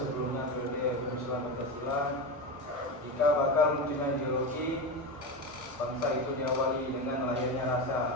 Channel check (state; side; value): normal; both; correlation 0.19